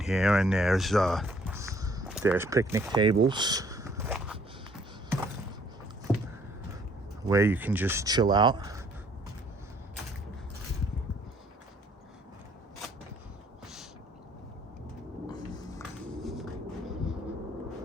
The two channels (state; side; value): normal; both; correlation 0.62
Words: here, and there's picnic tables where you can just chill out.